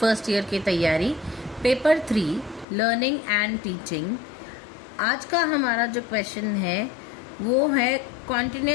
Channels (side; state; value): right; drops out; at 2.7 s